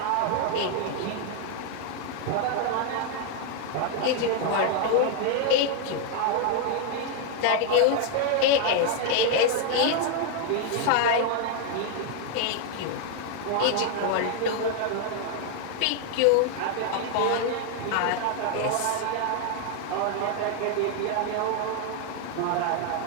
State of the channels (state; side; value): different; both; correlation 0.00